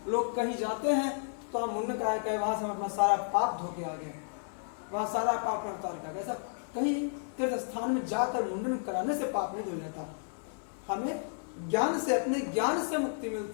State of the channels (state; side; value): silent; right; 56 dB below the other